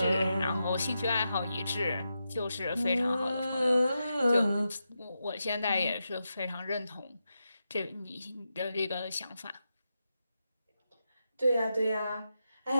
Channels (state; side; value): inverted; both; correlation -0.87